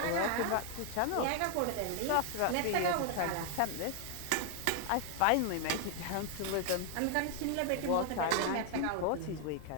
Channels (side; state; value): both; different; correlation 0.00